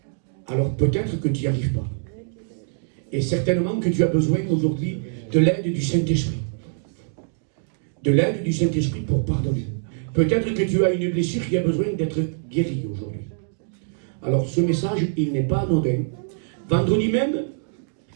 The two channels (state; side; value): silent; left; digital silence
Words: Alors peut-être que tu n'y arrives pas. Et certainement que tu as besoin aujourd'hui de l'aide du Saint-Esprit. De l'aide du Saint-Esprit pour pardonner. Peut-être que tu as une blessure qui a besoin d'être guérie aujourd'hui. Alors ce message, il n'est pas anodin. Vendredi même,